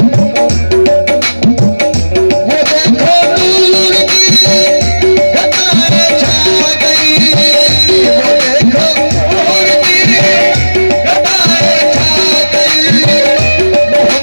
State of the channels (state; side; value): inverted; both; correlation -1.00